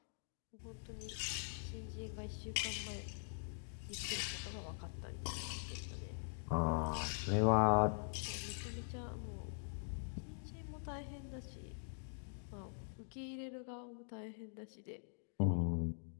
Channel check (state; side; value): silent; right; digital silence